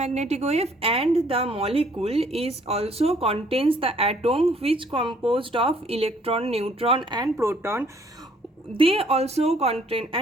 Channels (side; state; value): both; normal; correlation 0.62